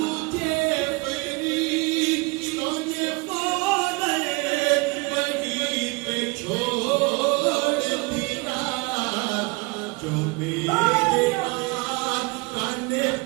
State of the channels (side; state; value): left; quieter; 27.1 dB